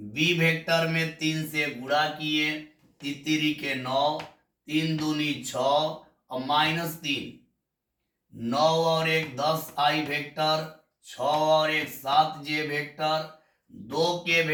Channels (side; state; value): both; identical; correlation 1.00